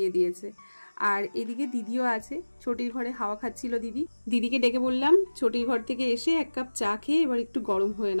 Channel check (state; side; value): inverted; both; correlation -1.00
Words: দিয়েছে। আর এদিকে দিদিও আছে, ছোটির ঘরে হাওয়া খাচ্ছিল দিদি। দিদিকে ডেকে বললাম ছোটির ঘর থেকে এসে এক কাপ চা খেয়ে এবার একটু গরম হয়ে